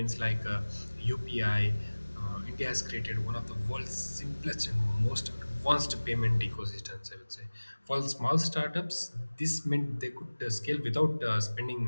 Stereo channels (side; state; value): both; inverted; correlation -1.00